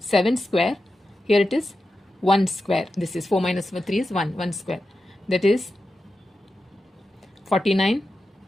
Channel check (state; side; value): normal; both; correlation 0.91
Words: square. Here it is 1 square. This is 4 minus 3 is 1 square. That is 49